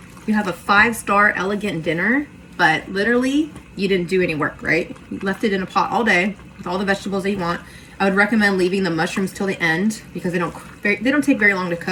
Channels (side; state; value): both; identical; correlation 1.00